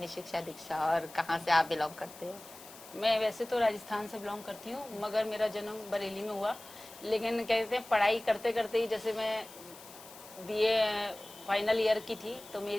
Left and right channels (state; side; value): noise; left; hiss, 18 dB below the sound